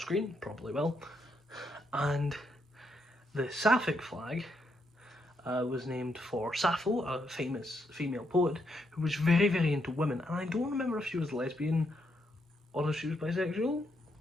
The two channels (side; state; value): both; normal; correlation 0.78